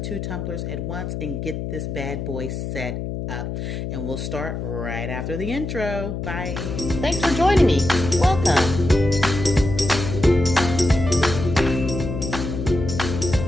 tumblers at once and get this bad boy set up. And we'll start right after the intro. Bye. Thanks for joining me. Welcome.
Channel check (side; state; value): left; noise; hum, 5 dB below the sound